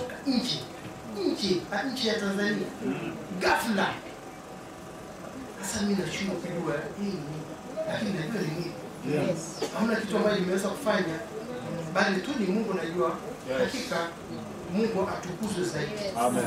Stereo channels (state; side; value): identical; both; correlation 1.00